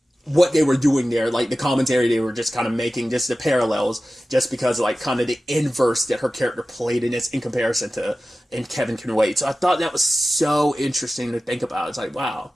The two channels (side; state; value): both; normal; correlation 0.95